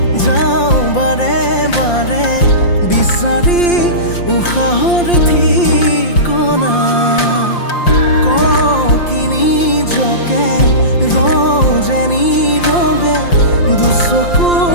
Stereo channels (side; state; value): right; late; 5.7 ms